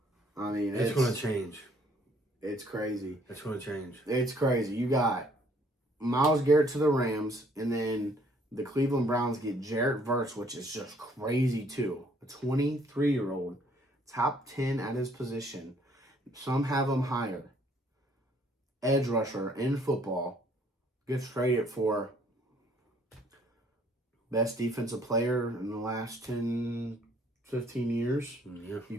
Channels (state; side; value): normal; both; correlation 0.63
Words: I mean, it's going to change. It's crazy. It's going to change. It's crazy. You got Myles Garrett to the Rams, and then the Cleveland Browns get Jarrett Verse, which is just crazy too. A 23-year-old. Top 10 at his position. Some have him higher. Edge rusher in football. Gets traded for best defensive player in the last 10, 15 years. Yeah. You